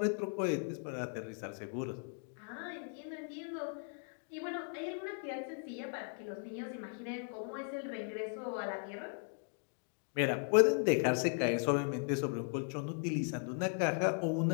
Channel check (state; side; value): silent; right; 53 dB below the other